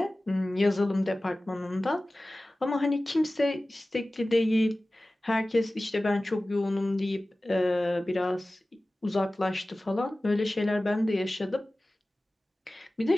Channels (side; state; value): both; normal; correlation 0.97